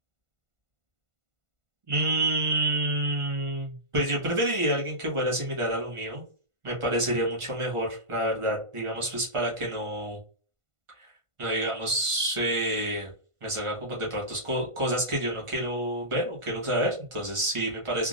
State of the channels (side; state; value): left; late; 1.5 ms